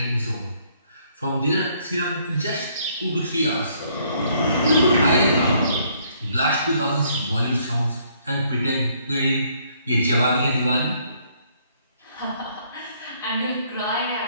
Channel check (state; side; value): inverted; both; correlation -0.67